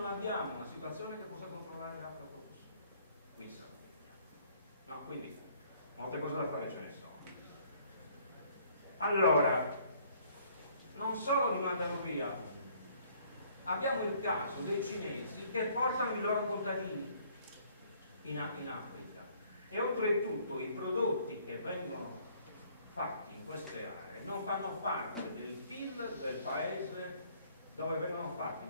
abbiamo una situazione che possa controllare le aflatotossine, qui in Sardegna. No, quindi molte cose da fare ce ne sono. Allora, non solo li mandano via, abbiamo il caso dei cinesi che portano i loro contadini in Africa e oltretutto i prodotti che vengono fatti in queste aree non fanno parte del PIL del paese dove vengono fatti,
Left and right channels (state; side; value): inverted; both; correlation -0.61